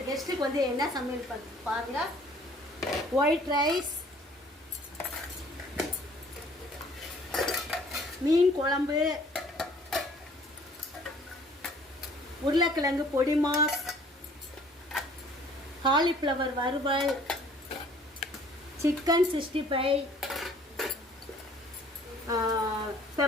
கெஸ்ட்டுக்கு வந்து என்ன சமையல் பாருங்க. ஒயிட் ரைஸ், மீன் குழம்பு, உருளைக்கிழங்கு பொடி மாஸ், காலிஃப்ளவர் வறுவல், சிக்கன் 65,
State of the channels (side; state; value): both; normal; correlation 0.56